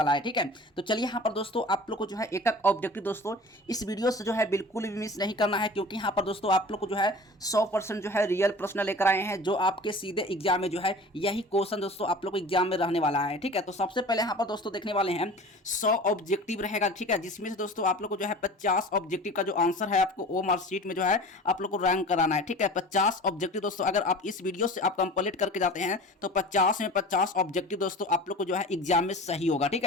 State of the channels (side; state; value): both; normal; correlation 0.40